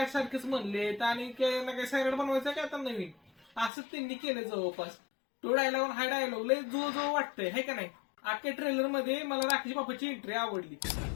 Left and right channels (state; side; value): drops out; right; at 3.7 s